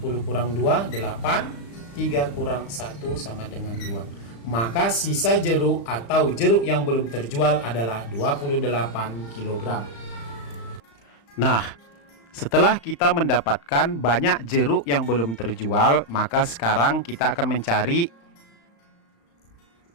kurang 2, 8. 3 kurang 1 sama dengan 2. Maka sisa jeruk atau jeruk yang belum terjual adalah 28 kg. Nah, setelah kita mendapatkan banyak jeruk yang belum terjual, maka sekarang kita akan mencari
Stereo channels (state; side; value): late; right; 35 ms